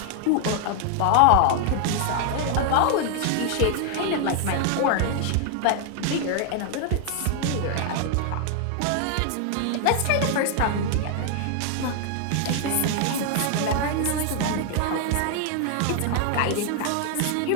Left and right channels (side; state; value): both; different; correlation 0.00